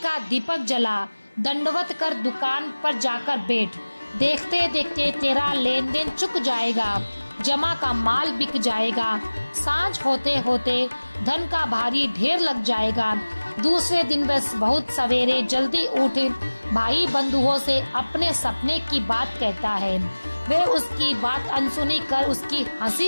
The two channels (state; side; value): inverted; both; correlation -1.00